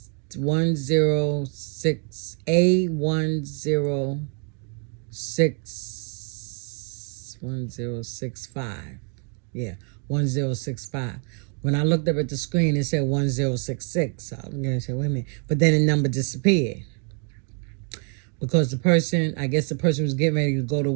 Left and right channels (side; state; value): left; quieter; 39.7 dB